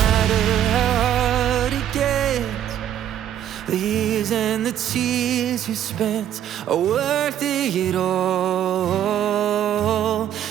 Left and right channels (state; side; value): quieter; left; 10.7 dB